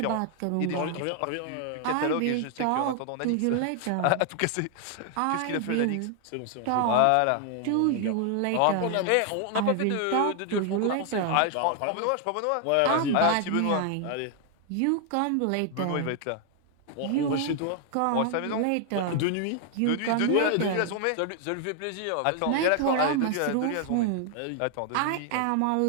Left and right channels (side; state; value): both; different; correlation 0.00